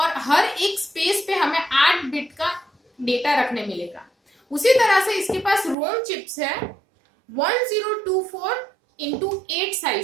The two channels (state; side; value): drops out; left; at 5.8 s